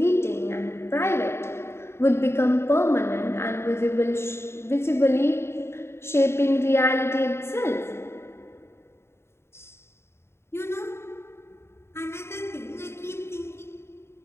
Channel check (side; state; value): right; late; 0.12 ms